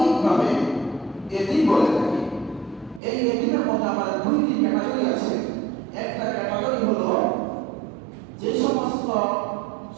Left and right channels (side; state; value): left; drops out; at 3.0 s